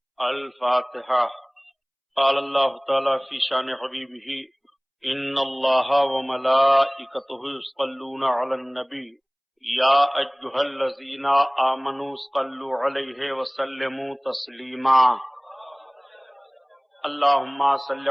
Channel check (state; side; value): identical; both; correlation 1.00